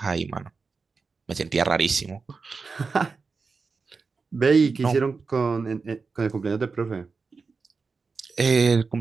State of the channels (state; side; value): quieter; left; 4.6 dB